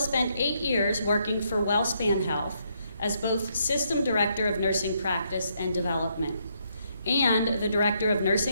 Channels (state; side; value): inverted; both; correlation -0.75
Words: 8 years working for WellSpan Health as both System Director of Nursing Practice and Development and the Director of